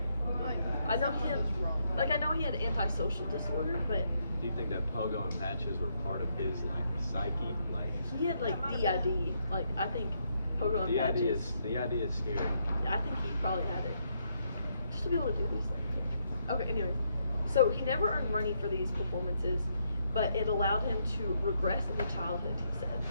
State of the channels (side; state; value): both; inverted; correlation -0.76